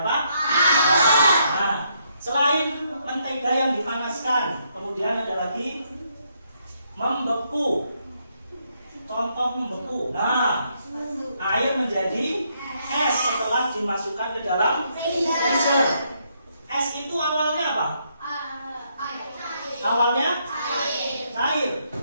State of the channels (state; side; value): inverted; both; correlation -0.75